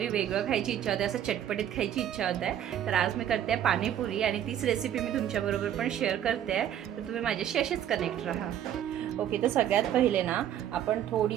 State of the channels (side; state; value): left; quieter; 10.6 dB